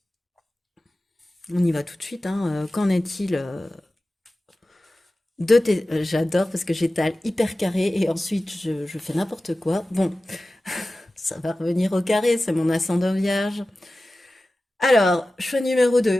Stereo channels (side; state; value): both; normal; correlation 0.95